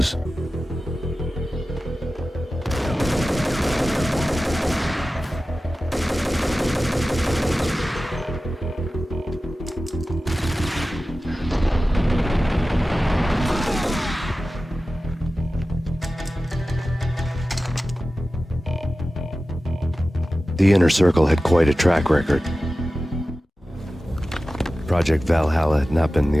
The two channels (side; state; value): both; normal; correlation 0.95